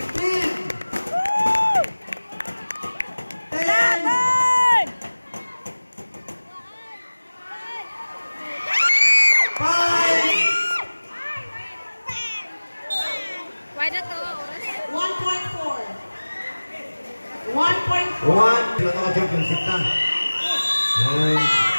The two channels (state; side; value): inverted; both; correlation -1.00